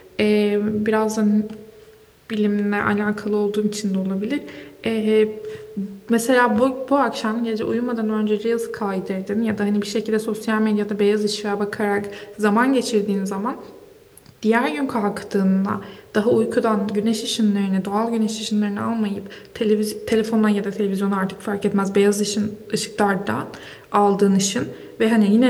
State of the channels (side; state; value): both; identical; correlation 1.00